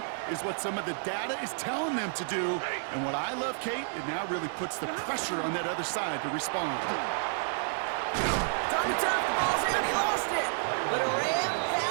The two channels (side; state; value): left; silent; digital silence